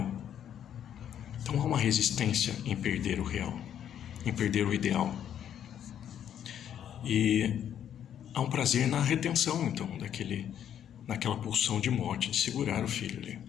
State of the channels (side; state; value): right; quieter; 9.7 dB